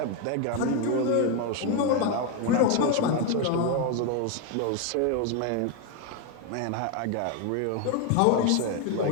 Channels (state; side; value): different; both; correlation 0.01